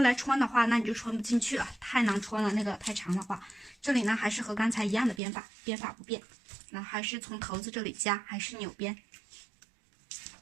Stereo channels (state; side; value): drops out; left; at 5.2 s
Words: 来穿的话，那你就穿不进去了，太难穿了，那个太长的话。这里呢还是和刚才一样的编法，编法不变，那还是从头子这里加，还是扭边。